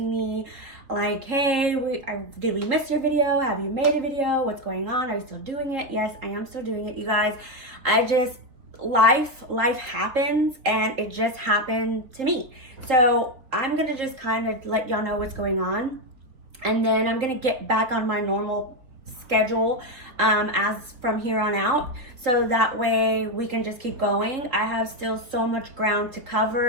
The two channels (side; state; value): left; late; 3.9 ms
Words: me like, hey, did we miss your video? Have you made a video? What's going on? Are you still doing it? Yes, I am still doing it, you guys. Life happens, and it just happened to me. So I'm gonna just kind of let y'all know what's going on, and then I'm gonna get back on my normal schedule as from here on out, so that way we can just keep going. I have still so much ground to